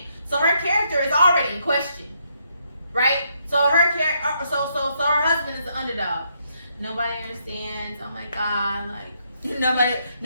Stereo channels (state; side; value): inverted; both; correlation -0.75